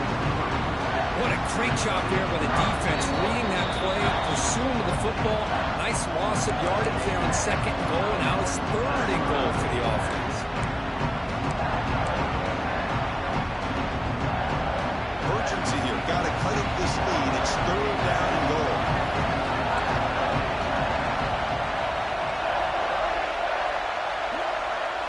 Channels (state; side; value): identical; both; correlation 1.00